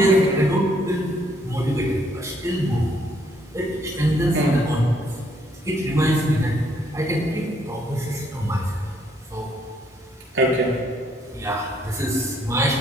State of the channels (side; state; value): both; normal; correlation 0.69